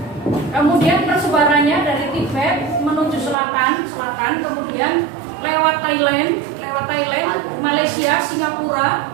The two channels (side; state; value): left; drops out; at 3.4 s